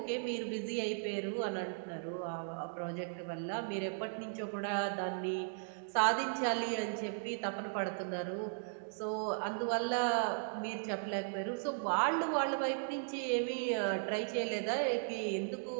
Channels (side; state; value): left; silent; digital silence